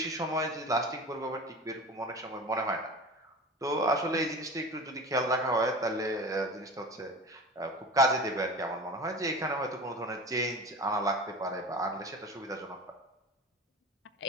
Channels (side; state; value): both; normal; correlation 0.34